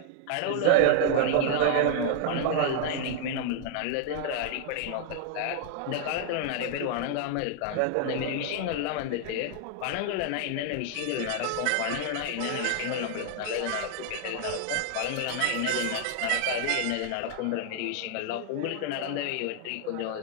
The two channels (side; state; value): both; different; correlation 0.00